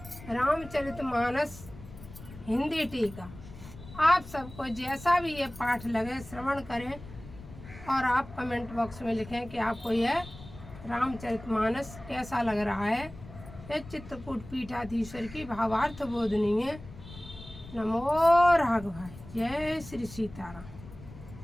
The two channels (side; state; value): left; noise; rumble, 16 dB below the sound